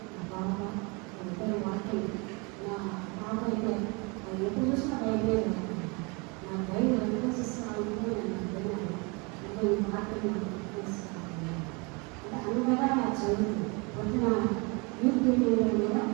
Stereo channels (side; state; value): left; quieter; 29.8 dB